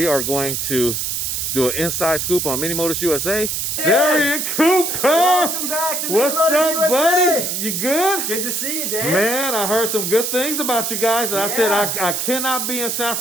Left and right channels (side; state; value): right; noise; hiss, 1 dB below the sound